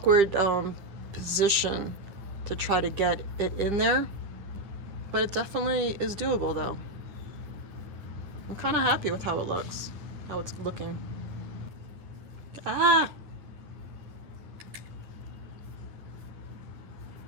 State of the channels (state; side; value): late; left; 10 ms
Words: position to try to get it in there. But it definitely is doable though. I'm kind of happy with how it looks, how it's looking. Ah!